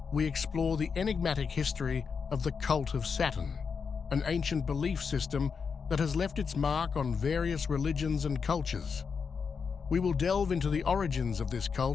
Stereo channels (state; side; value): quieter; right; 5.8 dB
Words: we explore the enigmatic history of the Cult of Saturn, an ancient belief system that has left its mark on various religions and cultures. We will delve into the origins of this